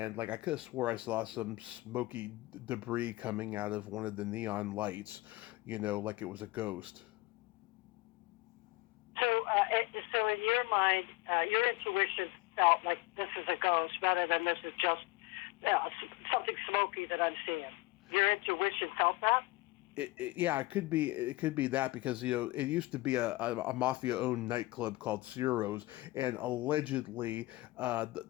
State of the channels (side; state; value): right; quieter; 20.4 dB